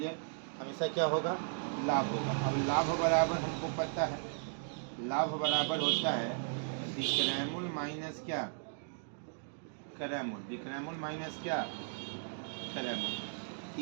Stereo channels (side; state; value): left; silent; digital silence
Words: हमेशा क्या होगा, लाभ होगा। अब लाभ बराबर हमको पता है, लाभ बराबर होता है विक्रैमुल माइनस क्या, क्रैमुल। विक्रैमुल माइनस क्या, क्रैमुल।